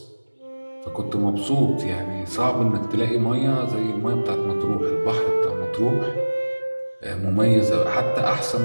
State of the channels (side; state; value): both; inverted; correlation -1.00